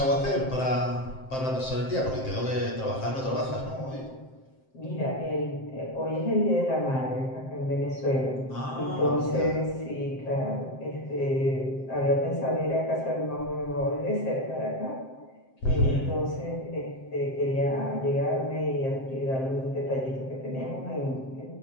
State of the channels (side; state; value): right; late; 7.6 ms